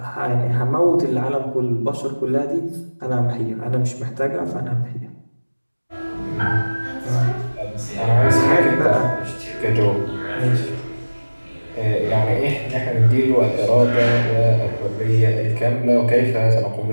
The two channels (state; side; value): inverted; both; correlation -1.00